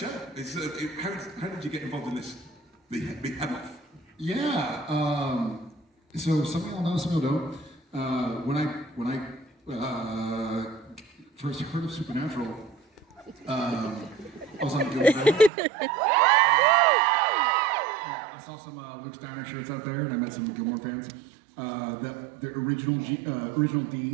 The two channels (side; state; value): left; drops out; at 15.5 s